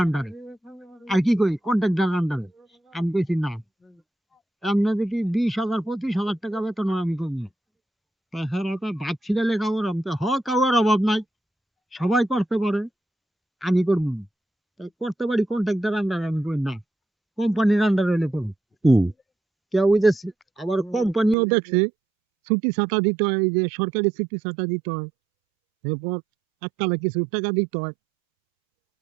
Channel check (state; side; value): drops out; left; at 21.4 s